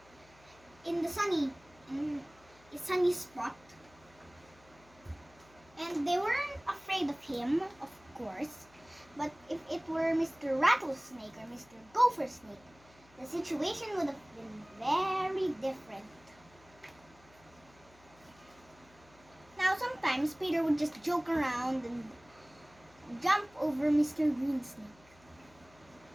in a sunny spot. And they weren't afraid of him, of course. But if it were Mr. Rattlesnake or Mr. Gopher Snake, the situation would have been very different. Now, sometimes Peter would just joke around and jump over Mr. Green Snake.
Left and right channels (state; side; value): noise; left; hum, 27 dB below the sound